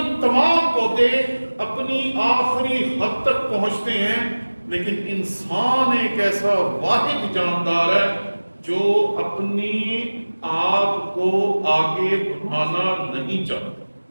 تمام پودے اپنی آخری حد تک پہنچتے ہیں، لیکن انسان ایک ایسا واحد جاندار ہے جو اپنی آپ کو آگے بڑھانا نہیں چاہتا۔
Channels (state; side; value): inverted; both; correlation -1.00